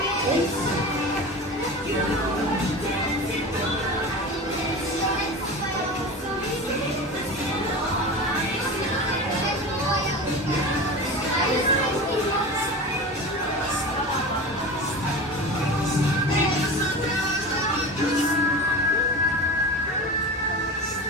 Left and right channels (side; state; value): both; normal; correlation 0.30